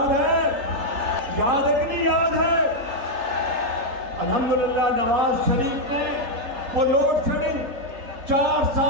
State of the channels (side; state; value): left; late; 3.8 ms